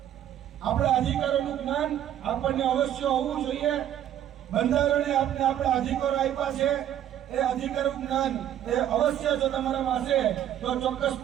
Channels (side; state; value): left; quieter; 11.1 dB